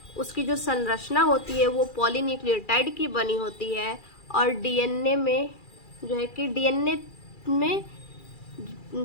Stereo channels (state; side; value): late; right; 2.4 ms